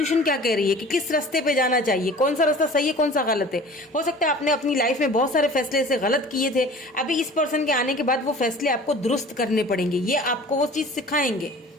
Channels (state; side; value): normal; both; correlation 0.43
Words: क्या कह रही है, कि किस रास्ते पे जाना चाहिए, कौन सा रास्ता सही है, कौन सा गलत है। हो सकता है आपने अपनी लाइफ में बहुत सारे फैसले ऐसे गलत किए थे, अभी इस पर्सन के आने के बाद वो फैसले आपको दुरुस्त करने पड़ेंगे, ये आपको वो चीज सिखाएंगे।